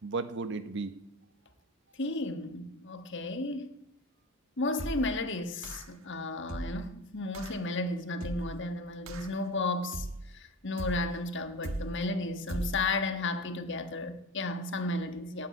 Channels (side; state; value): both; normal; correlation 0.30